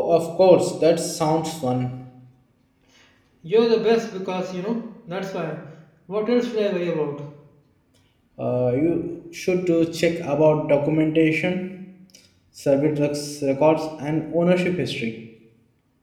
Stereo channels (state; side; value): identical; both; correlation 1.00